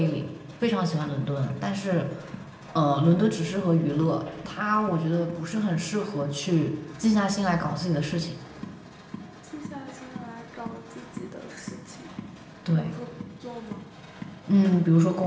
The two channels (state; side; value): identical; both; correlation 1.00